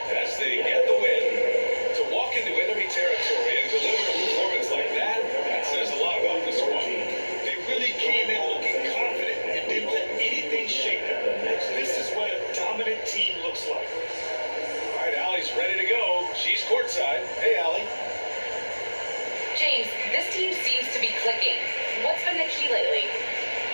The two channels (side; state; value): both; inverted; correlation -1.00